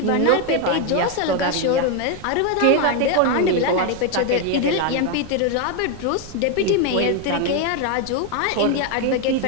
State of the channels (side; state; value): both; different; correlation 0.01